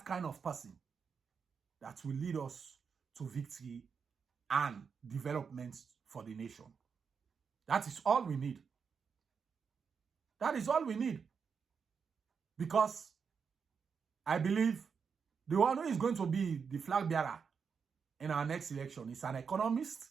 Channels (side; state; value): left; quieter; 6.1 dB